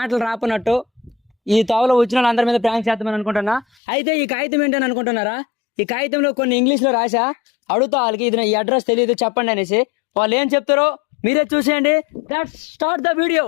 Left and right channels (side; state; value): right; drops out; at 3.7 s